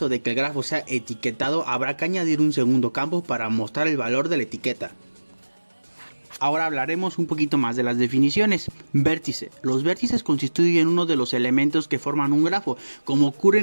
de que el grafo sea etiquetado, habrá que añadir un segundo campo para mostrar el valor de la etiqueta. Ahora hablaremos un poquito más de las definiciones. Vértice. Los vértices constituyen uno de los elementos que forman un grafo, como ocurre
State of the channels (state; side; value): inverted; both; correlation -1.00